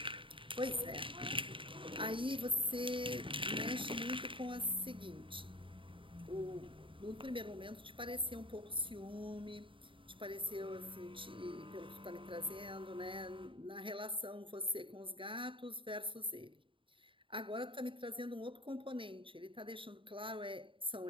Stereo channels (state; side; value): late; left; 0.25 ms